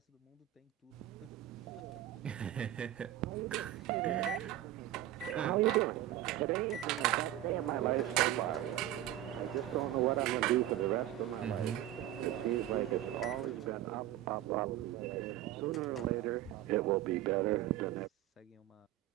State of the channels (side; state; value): left; quieter; 13.7 dB